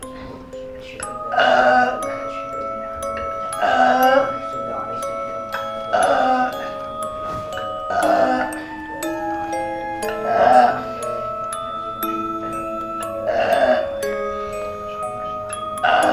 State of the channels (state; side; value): identical; both; correlation 1.00